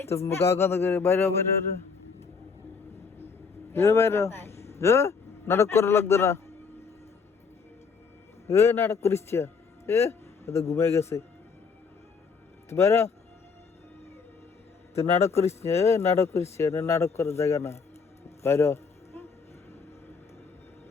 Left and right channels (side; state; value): right; quieter; 5.4 dB